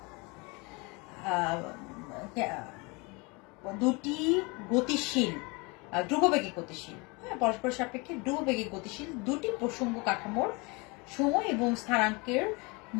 দুটি গতিশীল, ধ্রুববেগে গতিশীল, হ্যাঁ, পরস্পর সাপেক্ষে ধ্রুববেগে গতিশীল দুটি প্রসঙ্গ কাঠামোর সময় এবং স্থানাঙ্কের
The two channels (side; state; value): right; quieter; 27.9 dB